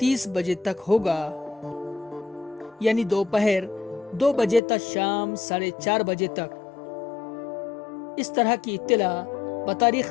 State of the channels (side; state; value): right; drops out; at 4.6 s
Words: बजे तक होगा, यानी दोपहर 2 बजे तक शाम 4:30 बजे तक। इस तरह की इत्तला